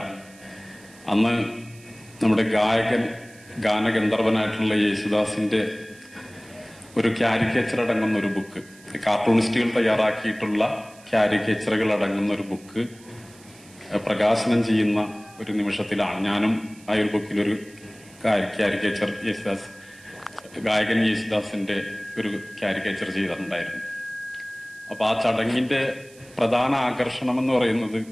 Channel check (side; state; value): right; noise; hiss, 24 dB below the sound